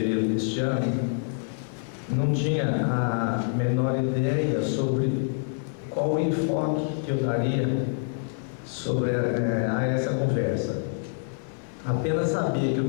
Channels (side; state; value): right; silent; 61 dB below the other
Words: deste ano, não tinha a menor ideia sobre qual o enfoque que eu daria sobre a essa conversa. Apenas sabia que o